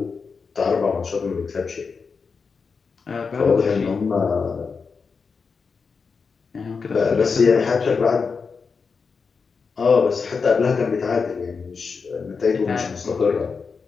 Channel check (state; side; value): quieter; right; 5.2 dB